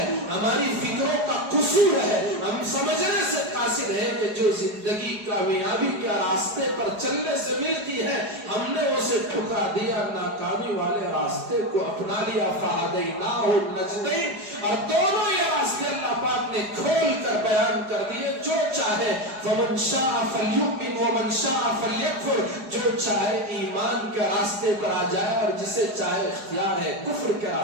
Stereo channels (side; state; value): left; late; 4.8 ms